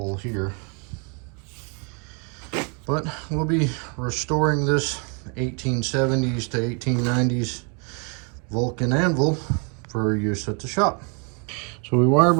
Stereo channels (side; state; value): left; quieter; 36.5 dB